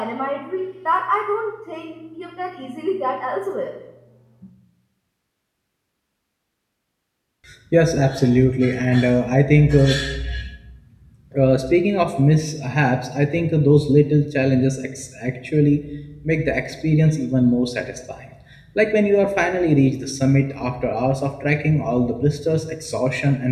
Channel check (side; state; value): both; identical; correlation 1.00